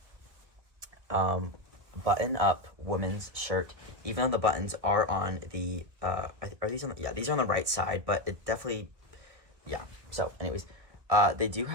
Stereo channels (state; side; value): late; left; 1.7 ms